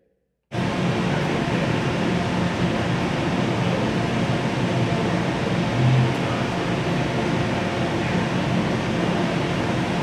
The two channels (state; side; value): identical; both; correlation 1.00